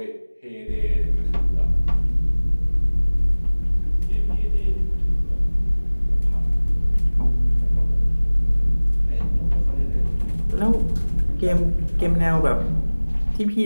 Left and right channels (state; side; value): inverted; both; correlation -1.00